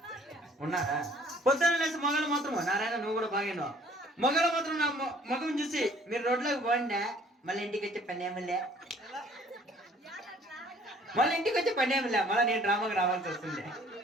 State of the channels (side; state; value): both; normal; correlation 0.57